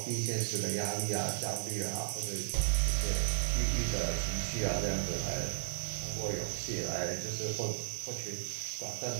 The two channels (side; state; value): left; silent; digital silence